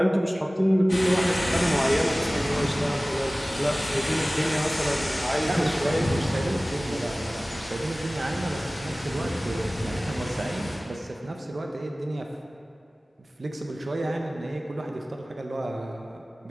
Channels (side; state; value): both; normal; correlation 0.98